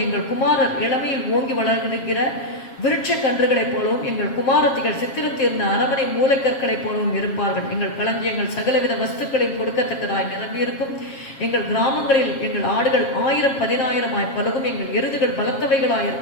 எங்கள் குமாரர் இளமையில் ஓங்கி வளர்கிற விருட்ச கன்றுகளைப் போலவும் எங்கள் குமாரத்திகள் சித்திரத்தீர்ந்த அரமனை மூளைக்கற்களைப் போலவும் இருப்பார்கள். எங்கள் களஞ்சியங்கள் சகலவித வஸ்துக்களையும் கொடுக்கத்தக்கதாய் நிரம்பியிருக்கும். எங்கள் கிராமங்களில் எங்கள் ஆடுகள் 1000-10,000 பலகும். எங்கள் எருதுகள்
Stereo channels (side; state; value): right; late; 7.4 ms